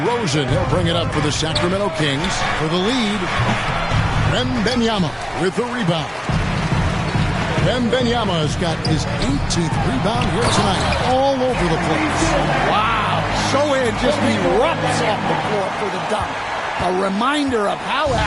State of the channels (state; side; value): identical; both; correlation 1.00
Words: He'll bring it up for the Sacramento Kings for the lead. Wembanyama with the rebound. Wembanyama has got his 18th rebound here tonight. All over the place. Wow. Sohan just erupts off the floor for the dunk. A reminder of how